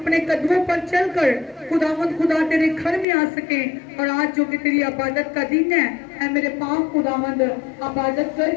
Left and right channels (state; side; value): drops out; right; at 3.1 s